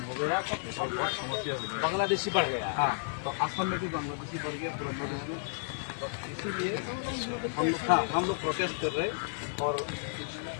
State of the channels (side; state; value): right; silent; digital silence